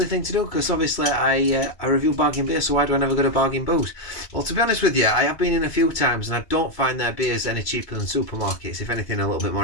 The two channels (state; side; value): late; right; 2.3 ms